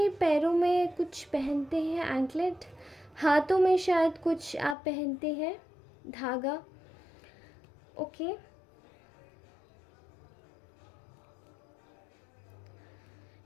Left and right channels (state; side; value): drops out; right; at 4.8 s